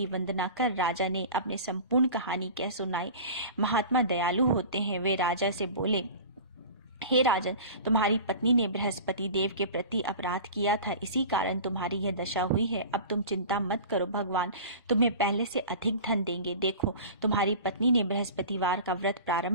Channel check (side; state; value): both; inverted; correlation -0.37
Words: वंदना कर राजा ने अपनी संपूर्ण कहानी कह सुनाई। महात्मा दयालु होते हैं। वे राजा से बोले, हे राजन, तुम्हारी पत्नी ने बृहस्पति देव के प्रति अपराध किया था, इसी कारण तुम्हारी यह दशा हुई है। अब तुम चिंता मत करो, भगवान तुम्हें पहले से अधिक धन देंगे। देखो, तुम्हारी पत्नी ने बृहस्पतिवार का व्रत